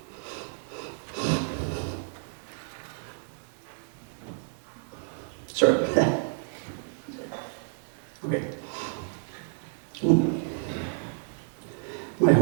Sorry. Okay. My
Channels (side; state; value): left; silent; digital silence